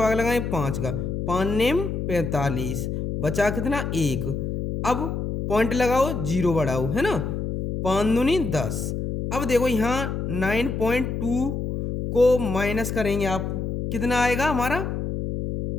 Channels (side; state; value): left; noise; hum, 3 dB below the sound